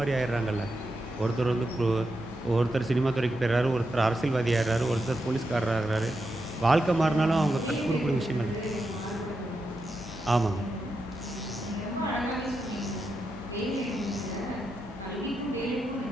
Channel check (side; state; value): both; normal; correlation 0.86